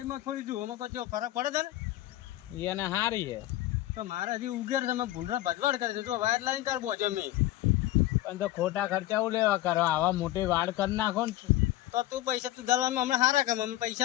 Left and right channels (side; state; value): right; quieter; 15.4 dB